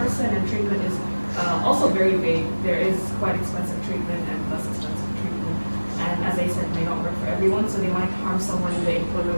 person, and treatment is also very vague. There is quite expensive treatment and less expensive treatment. And as I said, may not work for everyone, so they might harm someone in the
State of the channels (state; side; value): inverted; both; correlation -1.00